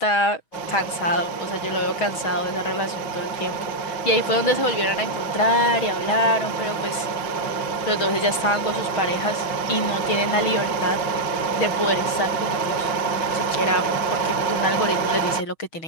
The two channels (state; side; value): late; right; 6.3 ms